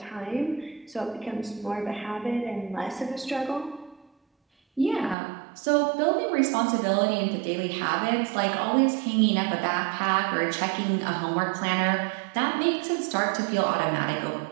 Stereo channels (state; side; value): drops out; left; at 5.2 s